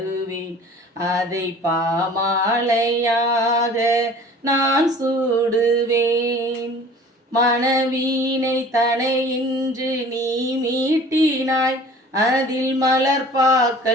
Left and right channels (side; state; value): both; normal; correlation 0.46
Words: அதை பாமாலையாக நான் சூடுவேன். மனவீனை தனை இன்று நீ மீட்டினாய், அதில்